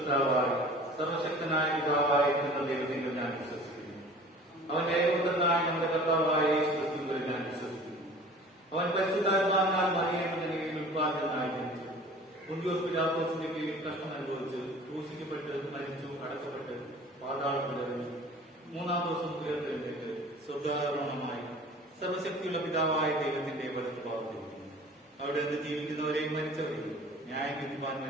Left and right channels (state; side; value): normal; both; correlation 0.45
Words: സർവശക്തനായ പിതാവായ ദൈവത്തിൽ ഞാൻ വിശ്വസിക്കുന്നു. അവൻ ഏകപുത്രനായ നമ്മുടെ കർത്താവായ യേശു ക്രിസ്തുവിൽ ഞാൻ വിശ്വസിക്കുന്നു. അവൻ പരിശുദ്ധാത്മാവിനാൽ മറിയയുടെ കീഴിൽ ഉത്പാദനായി ജനിച്ചു. പൊന്തിയോസ് പിലാത്തോസിന്റെ കീഴിൽ കഷ്ടം അനുഭവിച്ച് ക്രൂശിക്കപ്പെട്ട് മരിച്ചു, അടക്കപ്പെട്ട് പാതാളത്തിൽ ഇറങ്ങി 3-ാം ദിവസം ഉയർത്തെഴുന്നേറ്റ് സ്വർഗ്ഗാരോഹണമായി സർവശക്തിയുള്ള പിതാവായ ദൈവത്തിന്റെ വലത്ത് ഭാഗത്തിരിക്കുന്നു. അവിടെ നിന്ന് ജീവിക്കുന്നവരെയും മരിച്ചവരെയും ന്യായം വിധിപ്പാൻ